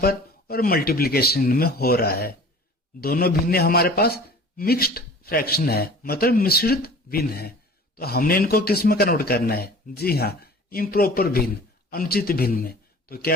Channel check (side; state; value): both; normal; correlation 0.44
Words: पर और मल्टीप्लिकेशन में हो रहा है। दोनों भिन्न हमारे पास मिक्स्ड फ्रैक्शन है, मतलब मिश्रित भिन्न है। तो हमने इनको किस में कन्वर्ट करना है? जी हाँ, इम्प्रॉपर भिन्न, अनुचित भिन्न में। तो